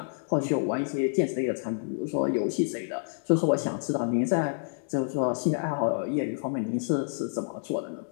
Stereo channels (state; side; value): silent; right; digital silence